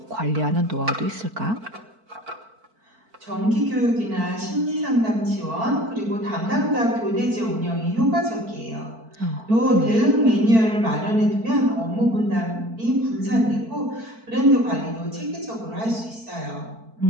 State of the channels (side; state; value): left; late; 4.5 ms